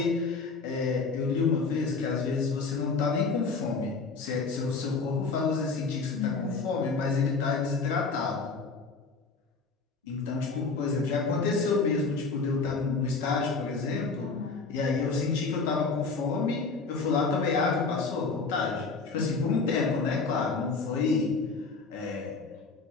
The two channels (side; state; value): right; quieter; 4.3 dB